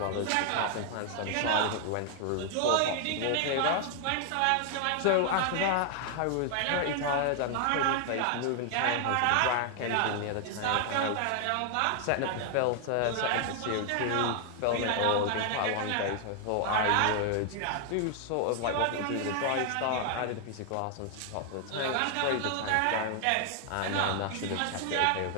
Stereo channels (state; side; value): different; both; correlation 0.00